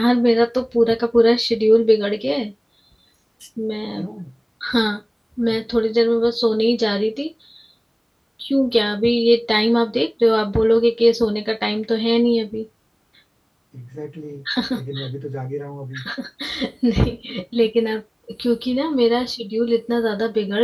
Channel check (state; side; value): identical; both; correlation 1.00